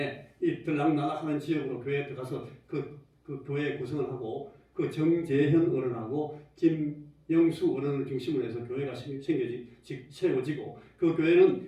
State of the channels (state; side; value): identical; both; correlation 1.00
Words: 이 들락날락하는 지역으로 교회에 들어가서 그 교회 구성을 하고, 그 정재현 어른하고 김영수 어른을 중심으로 해서 교회가 세워지고, 그